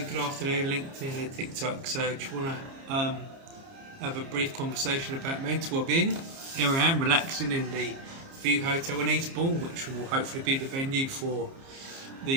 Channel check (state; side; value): late; left; 30 ms